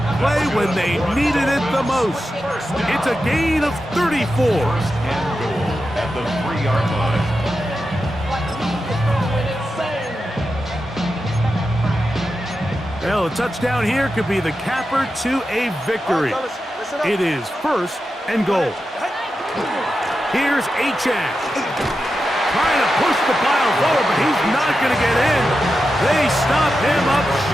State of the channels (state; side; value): normal; both; correlation 0.90